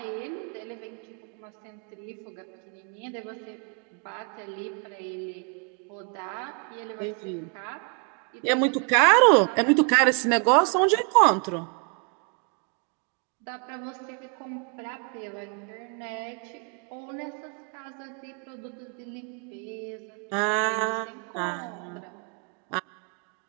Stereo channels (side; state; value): left; quieter; 38.1 dB